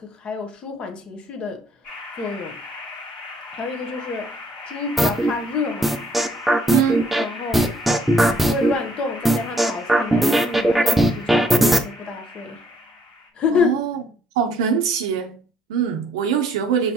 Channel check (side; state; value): both; normal; correlation 0.64